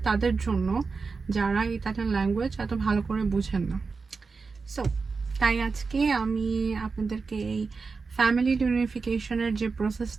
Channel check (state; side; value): quieter; left; 4.6 dB